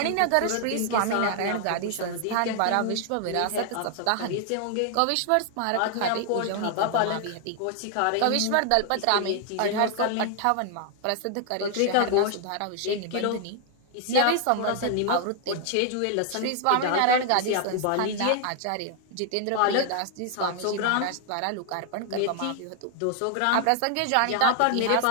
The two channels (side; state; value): both; different; correlation 0.00